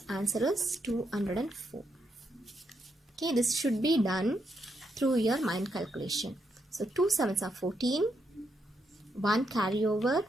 Answer is 204. Okay, this should be done through your mind calculation. So 2 7s are 14, 1 carry over,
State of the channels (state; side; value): normal; both; correlation 0.80